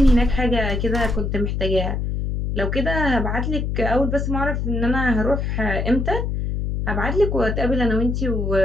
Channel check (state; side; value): noise; left; hum, 1 dB below the sound